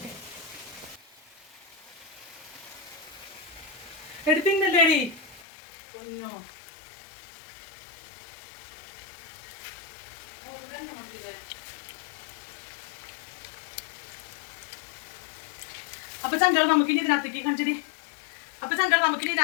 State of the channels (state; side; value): drops out; right; at 5.5 s